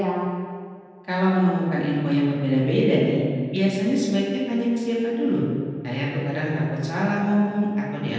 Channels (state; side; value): identical; both; correlation 1.00